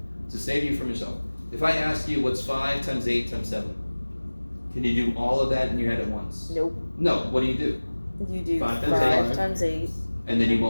to save you from yourself, if I ask you what's 5 times 8 times 7, can you do all of that in your head at once? Nope. No. What do? You do 5 5 times times 8. And then you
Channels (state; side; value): inverted; both; correlation -1.00